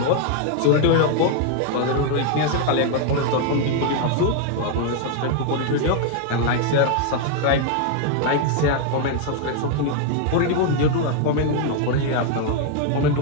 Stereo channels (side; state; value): both; different; correlation 0.00